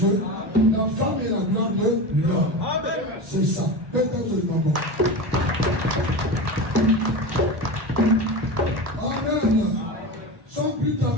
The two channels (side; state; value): left; late; 1.7 ms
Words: La femme est la gloire de l'homme. C'est ça. Amen. Sans plus